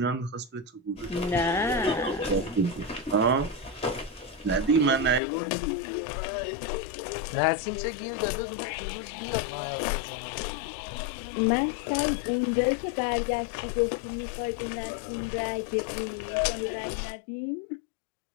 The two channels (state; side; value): drops out; right; at 5.2 s